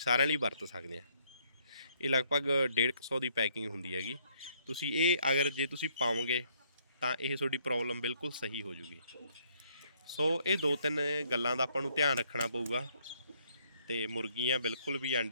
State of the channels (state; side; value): inverted; both; correlation -0.68